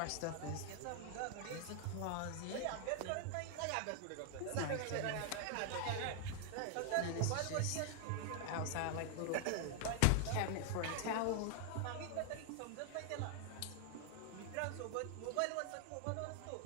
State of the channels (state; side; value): different; both; correlation 0.00